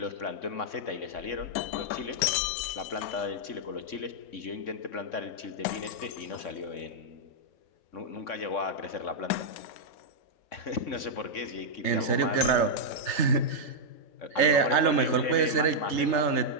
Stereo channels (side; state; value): right; late; 3.3 ms